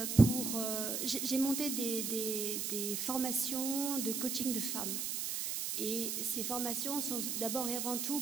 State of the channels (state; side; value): noise; right; hiss, 1 dB below the sound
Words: j'ai monté des formations de coaching de femmes. Et ces formations sont d'abord et avant tout